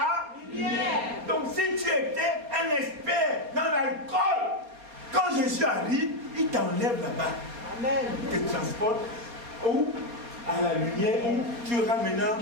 lumière. Donc si tu étais un expert dans l'alcool, quand Jésus arrive, il t'enlève là-bas. Amen. Il te transporte où? À la lumière, où tu auras maintenant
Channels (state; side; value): late; left; 4.2 ms